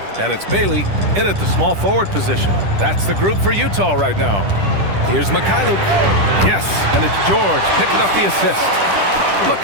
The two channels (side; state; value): left; late; 10 ms